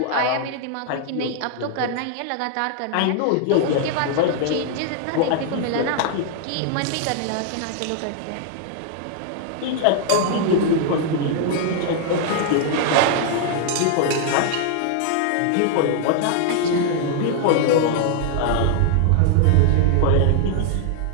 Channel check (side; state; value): both; different; correlation 0.00